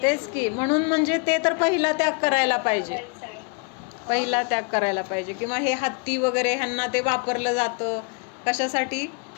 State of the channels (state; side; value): quieter; right; 33.6 dB